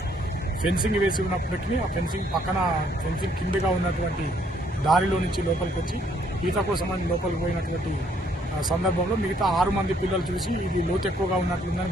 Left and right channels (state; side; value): normal; both; correlation 0.67